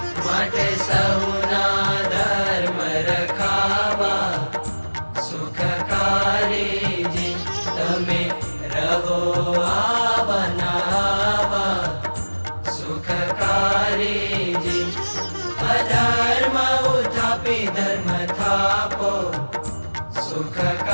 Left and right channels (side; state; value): both; inverted; correlation -1.00